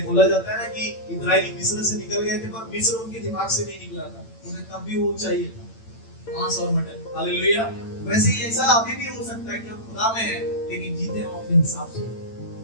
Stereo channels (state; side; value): late; right; 8.9 ms